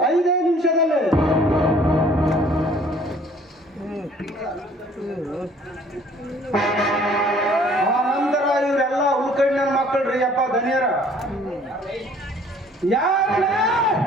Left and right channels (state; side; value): normal; both; correlation 0.56